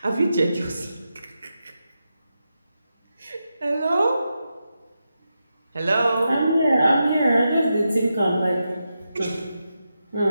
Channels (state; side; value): inverted; both; correlation -0.88